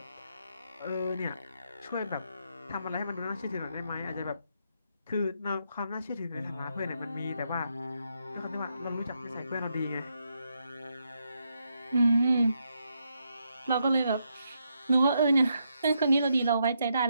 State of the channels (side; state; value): both; inverted; correlation -0.79